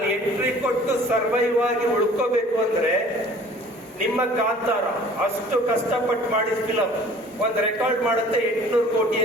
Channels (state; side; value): normal; both; correlation 0.50